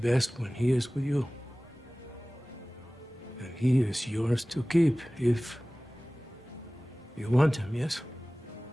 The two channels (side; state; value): both; normal; correlation 0.98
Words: when he is with you. And he is yours to keep if you want him, yes?